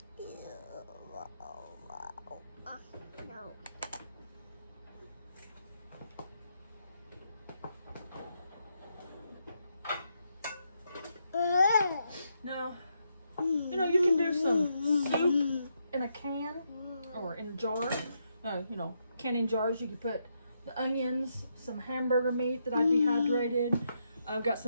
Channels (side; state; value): both; inverted; correlation -0.80